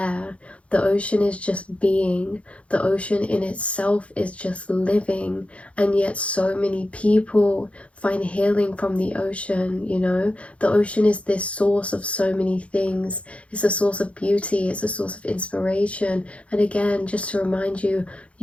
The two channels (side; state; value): right; late; 0.062 ms